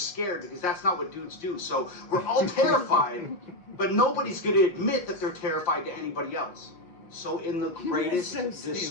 because that's not what dudes do. So we're all terrified, but nobody's going to admit that they're terrified to anybody else. So in the greatest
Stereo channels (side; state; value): right; late; 5.5 ms